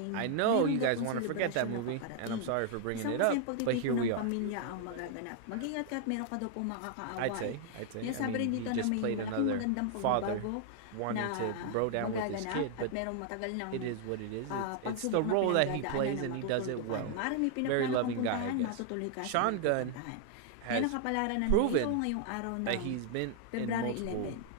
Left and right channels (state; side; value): different; both; correlation 0.00